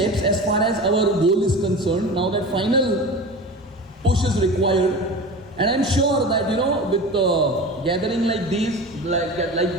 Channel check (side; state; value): both; normal; correlation 0.33